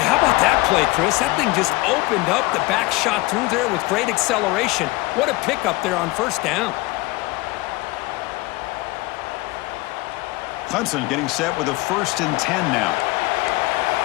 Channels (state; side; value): quieter; right; 21.5 dB